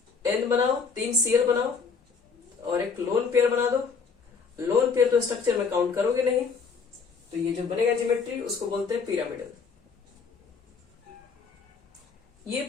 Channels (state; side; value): quieter; right; 5.3 dB